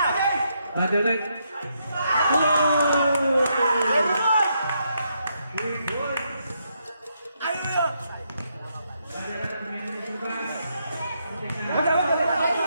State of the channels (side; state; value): both; inverted; correlation -0.78